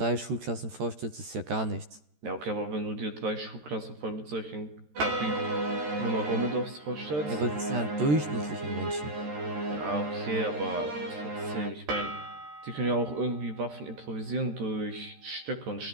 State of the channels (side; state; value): left; late; 13 ms